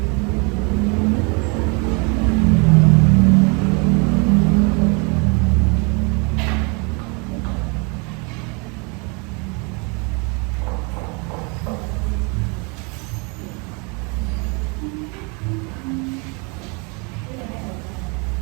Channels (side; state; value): left; quieter; 32.1 dB